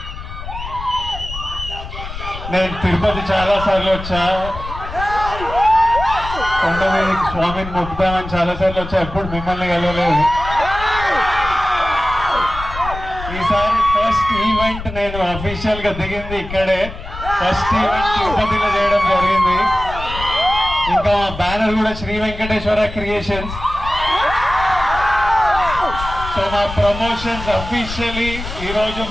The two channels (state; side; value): noise; left; rumble, 10 dB below the sound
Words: నేను తిరుపతి చాలా సార్లు వచ్చా, కొండ మీద స్వామిని మొక్కుతామని చాలా సార్లు వచ్చా, ఎప్పుడు మిమ్మల్ని కలవలేదు. ఈసారి ఫస్ట్ ఈవెంట్ నేను అఫీషియల్ గా దిగింది ఇక్కడే. ఫస్ట్ ఈవెంట్ తిరుపతిలో చేయడం జరిగింది. ఇంకా బ్యానర్ కూడా శ్రీ వెంకటేశ్వర క్రియేషన్స్. సో మా ప్రమోషన్స్ అఫీషియలీ ఈరోజు